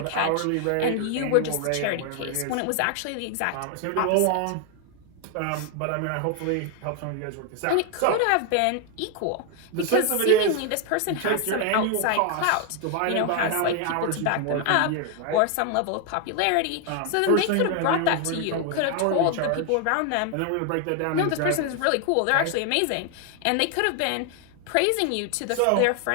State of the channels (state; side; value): different; both; correlation 0.00